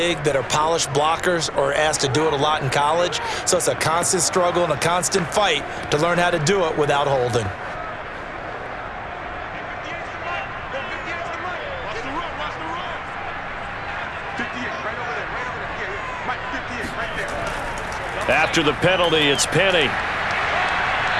that are polished blockers or asked to do it a lot in college. So it's a constant struggle and a constant fight to learn how to do it without holding. After the penalty, it's Penny.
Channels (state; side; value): identical; both; correlation 1.00